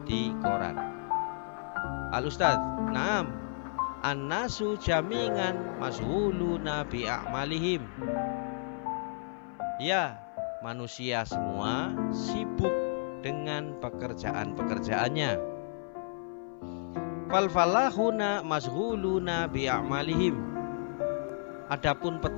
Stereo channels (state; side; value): silent; right; 56 dB below the other